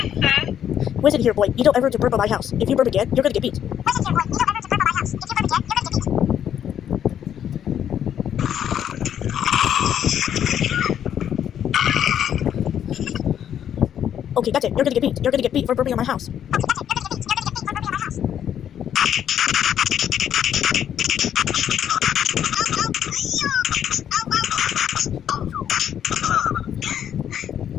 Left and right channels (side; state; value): right; quieter; 9.6 dB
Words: Listen here, boy. You don't ever to burp on my house. If you burp again, you're gonna get beat. Okay, that's it. You're gonna get beat. You're gonna get beat for burping on my house.